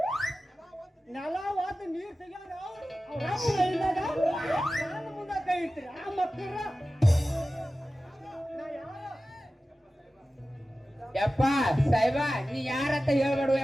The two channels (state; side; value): normal; both; correlation 0.95